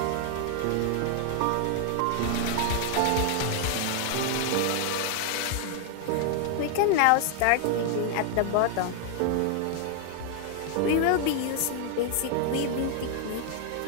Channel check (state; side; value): different; both; correlation 0.00